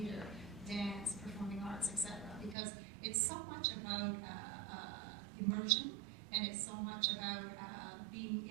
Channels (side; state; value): left; drops out; at 2.6 s